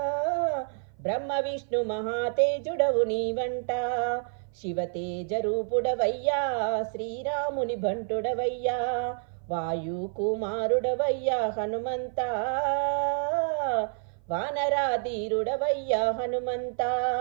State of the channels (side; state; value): left; silent; 55 dB below the other